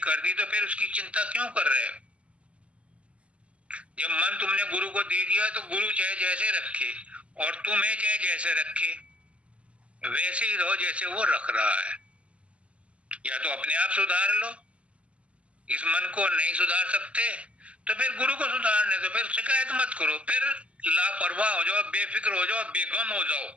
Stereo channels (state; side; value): late; left; 0.060 ms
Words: दी, तो फिर उसकी चिंता क्यों कर रहे हो? जब मन तुमने गुरु को दे दिया तो गुरु चाहे जैसे रखे और तुम्हें चाहे जैसे रखे, वैसे ही रहो जैसे वो रख रहा है। या तो अपने आप सुधार लो, इस मन को नहीं सुधार सकते तो फिर गुरु को सुधारने दो, फिर शिकायत मत करो, फिर लापरवाह हो जाओ, बेफिक्र हो जाओ, बेगम हो जाओ